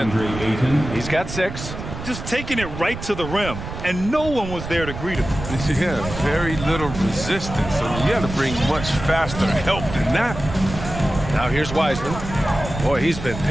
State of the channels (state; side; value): noise; right; rumble, 9 dB below the sound